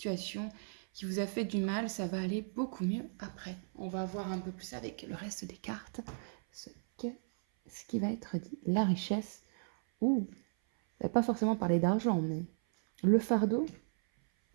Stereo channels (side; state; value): left; silent; 54 dB below the other